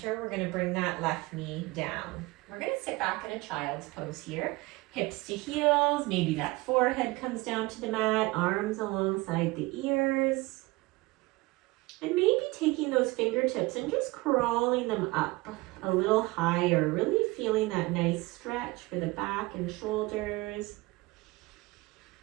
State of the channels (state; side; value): quieter; left; 22.3 dB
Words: we're going to bring that left knee down. We're going to sit back in a child's pose here. Hips to heels, maybe that forehead comes down to the mat, arms alongside the ears. And maybe taking those fingertips and just crawling them up a little higher, really feeling that nice stretch for the back and shoulders.